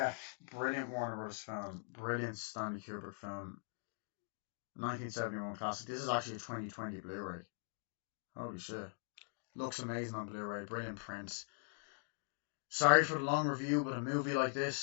brilliant Warner Brothers film, brilliant Stanley Kubrick film, 1971 classic. This is actually a 2020 Blu-ray. Holy shit, looks amazing on Blu-ray, brilliant prints. Sorry for the long review, but a movie like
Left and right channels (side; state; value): right; silent; 50 dB below the other